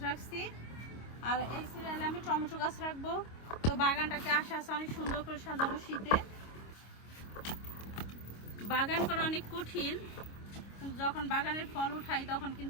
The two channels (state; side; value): late; right; 25 ms